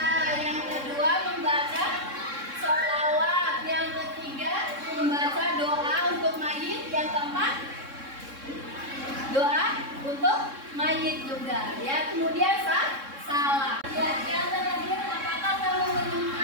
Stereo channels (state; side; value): late; left; 3.6 ms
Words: yang kedua membaca sholawat, yang ketiga membaca doa untuk mayit, yang keempat doa untuk mayit juga ya. Kemudian salam.